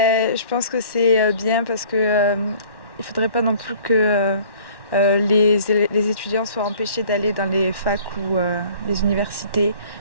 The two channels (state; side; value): late; right; 1.1 ms